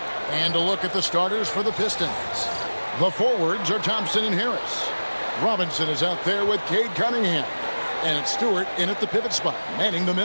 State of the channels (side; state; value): both; inverted; correlation -1.00